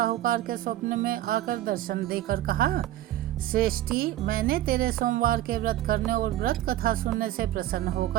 के स्वप्न में आकर दर्शन देकर कहा, श्रेष्ठी, मैंने तेरे सोमवार के व्रत करने और व्रत कथा सुनने से प्रसन्न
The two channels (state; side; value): quieter; left; 13.6 dB